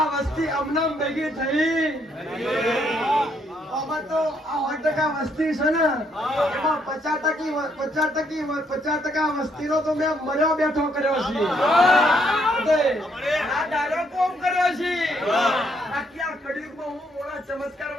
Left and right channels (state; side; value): normal; both; correlation 0.71